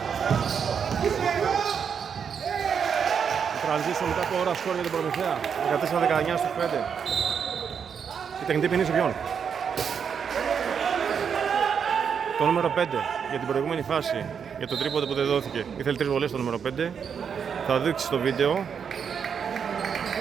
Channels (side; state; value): left; quieter; 7.0 dB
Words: Transition μετά από ώρα σκόρ για την Προμηθέα. 14-19 στους 5. Η τεχνητή ποινή σε ποιον? Το νούμερο 5 για την προηγούμενη φάση, για το τρίποντο που δεν δόθηκε. Ήθελε 3 βολές το νούμερο 5. Θα δείξει στο βίντεο